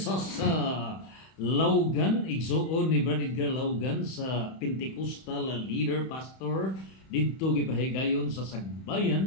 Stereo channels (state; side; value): late; right; 31 ms